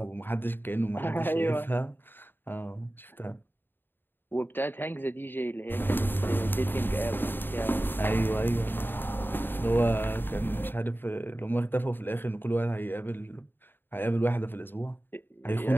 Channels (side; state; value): right; late; 0.096 ms